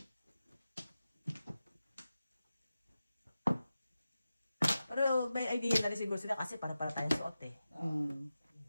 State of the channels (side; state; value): both; inverted; correlation -0.93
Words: Pero may idea na rin siguro sila kasi para tayong suot eh.